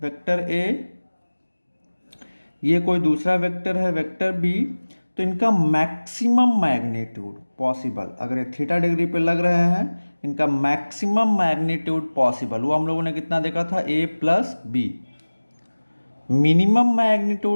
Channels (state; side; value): inverted; both; correlation -1.00